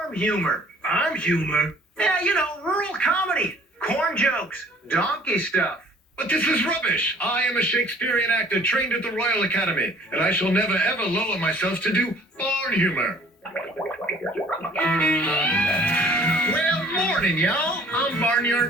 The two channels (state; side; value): normal; both; correlation 0.54